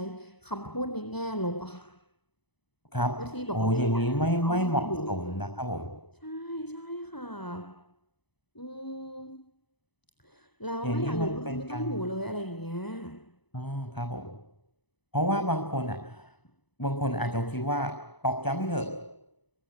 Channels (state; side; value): late; right; 0.99 ms